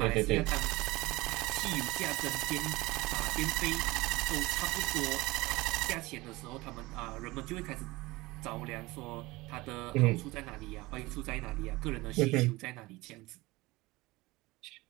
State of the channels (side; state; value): left; quieter; 21.1 dB